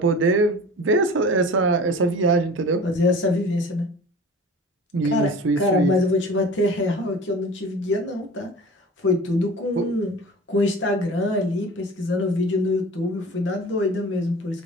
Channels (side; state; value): both; normal; correlation 0.40